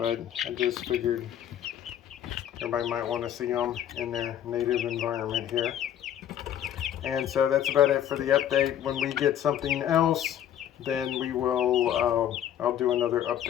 I just figured everybody might want to see them in their native environment here. And so that's about it for the update. When we get something else, then we will, I'll do another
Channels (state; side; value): quieter; right; 10.5 dB